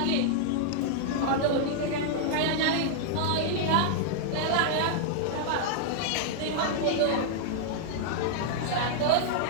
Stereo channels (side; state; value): both; different; correlation -0.01